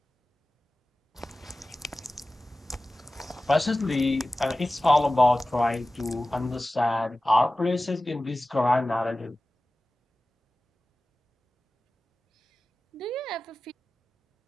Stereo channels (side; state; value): both; normal; correlation 0.96